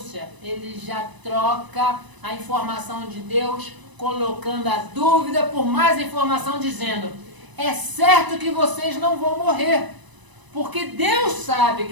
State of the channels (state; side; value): late; left; 1.0 ms